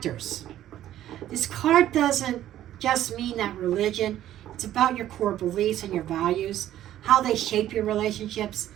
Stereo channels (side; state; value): left; quieter; 12.5 dB